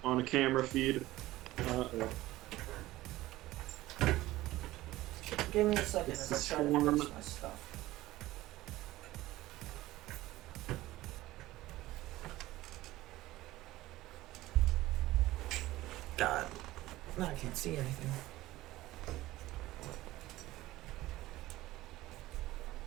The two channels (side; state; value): left; quieter; 17.0 dB